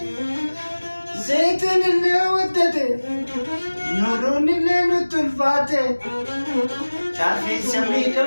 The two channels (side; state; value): both; inverted; correlation -1.00